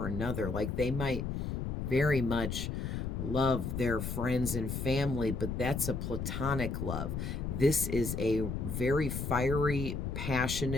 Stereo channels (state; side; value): noise; left; rumble, 3 dB below the sound